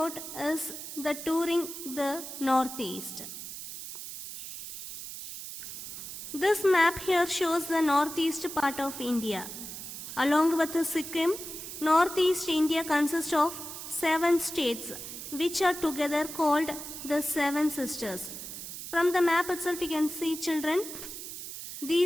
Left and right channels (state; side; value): noise; right; hiss, 9 dB below the sound